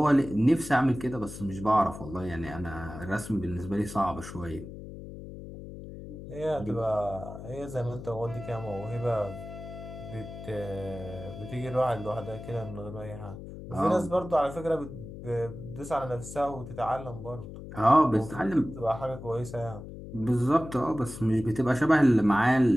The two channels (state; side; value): noise; left; hum, 12 dB below the sound